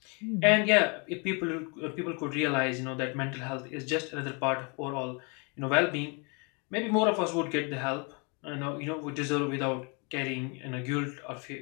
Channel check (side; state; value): right; quieter; 33.1 dB